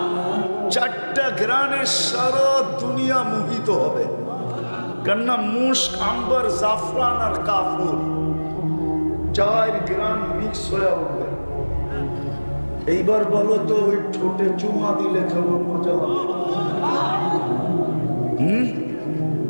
4টা গ্রানে সারা দুনিয়া মোহিত হবে। কেননা মুস্ক, আম্বার, জাফরান আর কাফুর 4 গ্রান মিক্স হয়ে উঠবে। এইবার বলো তো, ওই ঠোঁটে চুমা দিলে কেমন মজা হবে?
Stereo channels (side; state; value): both; inverted; correlation -1.00